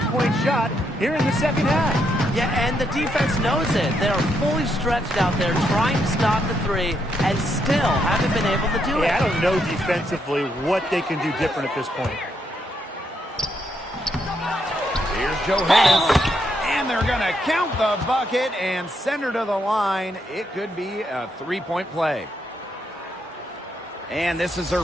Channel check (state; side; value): normal; both; correlation 0.77